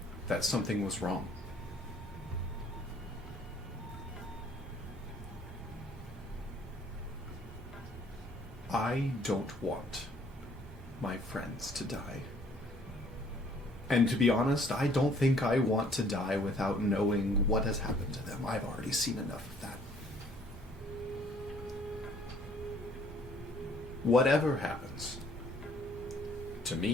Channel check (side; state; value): both; normal; correlation 0.60